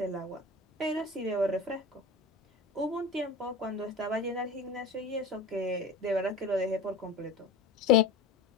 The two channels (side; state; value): right; quieter; 3.6 dB